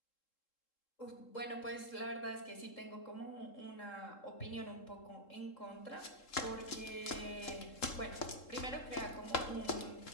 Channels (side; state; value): right; late; 3.7 ms